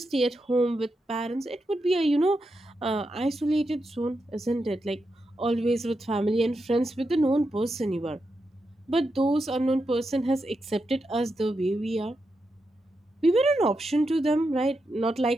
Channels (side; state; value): both; normal; correlation 0.86